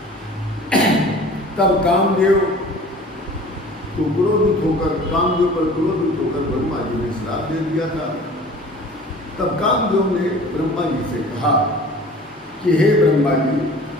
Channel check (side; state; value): both; normal; correlation 0.45